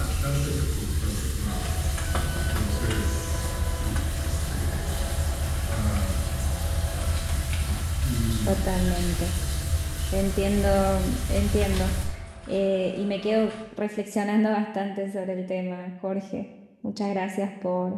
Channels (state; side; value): identical; both; correlation 1.00